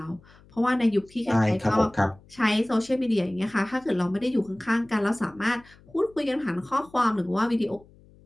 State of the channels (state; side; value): noise; left; hum, 26 dB below the sound